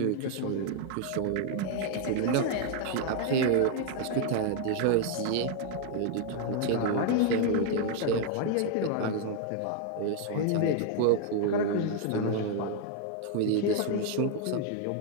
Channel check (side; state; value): both; different; correlation 0.00